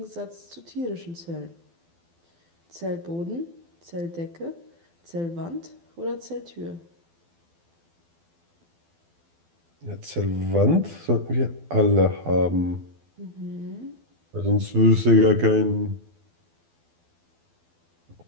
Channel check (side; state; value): left; late; 12 ms